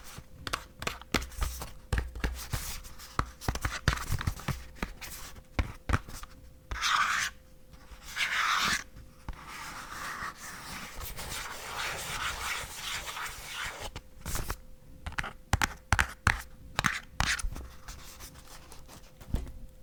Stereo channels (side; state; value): both; identical; correlation 1.00